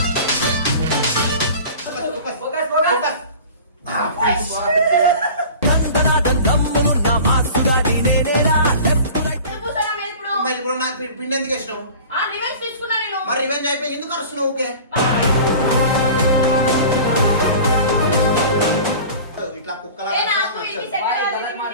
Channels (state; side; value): inverted; both; correlation -0.40